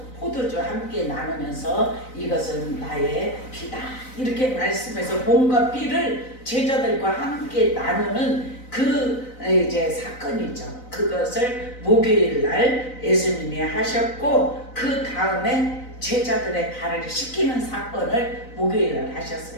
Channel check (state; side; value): late; right; 4.0 ms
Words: 포도주 함께 나누면서 이것은 나의 피다 이렇게 말씀해서 몸과 피를 제자들과 함께 나누는 그 이제 사건이죠. 그것을 목요일 날 예수님이 하셨고 그 다음에 제자들의 발을 씻기는 사건을 목요일 날